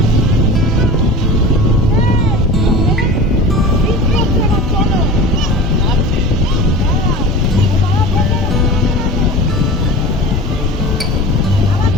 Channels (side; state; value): both; normal; correlation 0.35